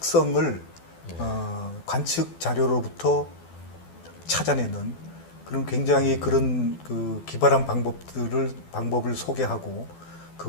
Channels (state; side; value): late; right; 12 ms